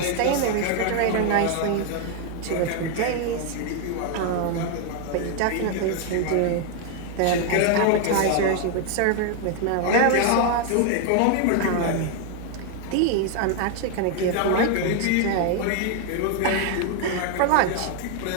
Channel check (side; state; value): both; different; correlation 0.00